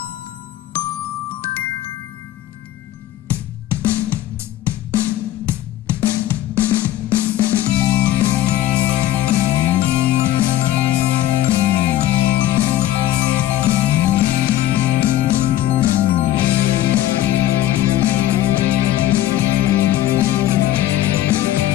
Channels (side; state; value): right; quieter; 13.5 dB